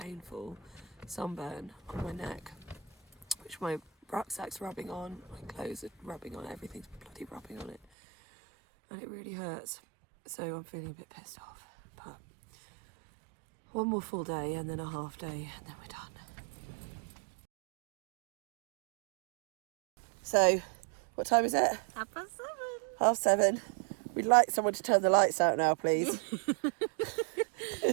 sunburn on my neck, which my rucksack's rubbing on, my clothes are rubbing on, everything's bloody rubbing on it, and it really hurts. So I'm feeling a bit pissed off, but one more full day and then a half day and then we're done. So, what time is it? 7:30. 7:30. We'd like someone to turn the lights out now, please.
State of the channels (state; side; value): drops out; left; at 7.8 s